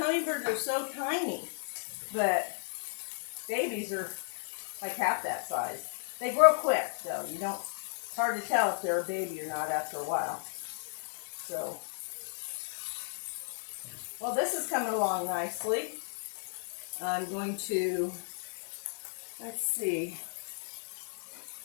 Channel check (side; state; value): right; silent; digital silence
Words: are so tiny, but babies are like half that size. They grow quick, so it's hard to tell if they're a baby or not after a while. So, well, this is coming along nicely. I'm going to, let's see,